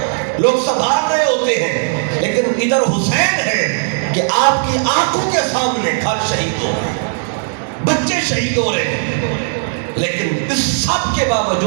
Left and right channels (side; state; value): left; silent; 65 dB below the other